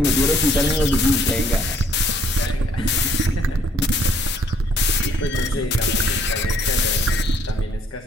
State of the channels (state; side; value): normal; both; correlation 0.64